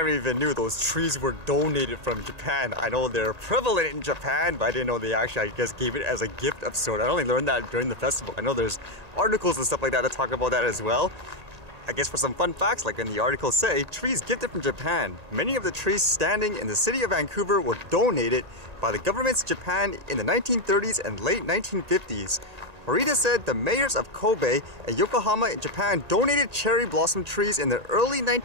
even knew those trees were donated from Japan. I know they're prevalent in Japan, but I didn't know they actually, I guess, gave it as a gift of sort. I only learned that during the festival. I know there's articles and stuff like that talk about that as well. I guess for some fun facts, like in the article say, trees gifted from Japan. Many of the trees standing in the city of Vancouver were donated by the governments of Japan in the 1930s and late 1950s. Horita said the mayors of Kobe and Yokohama in Japan donated cherry blossom trees in the early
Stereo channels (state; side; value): late; left; 1.8 ms